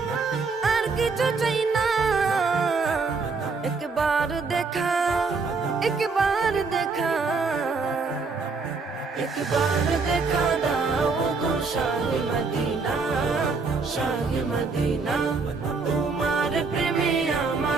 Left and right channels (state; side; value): quieter; left; 4.4 dB